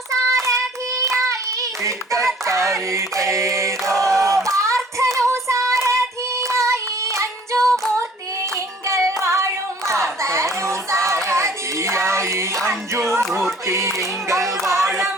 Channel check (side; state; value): both; normal; correlation 0.53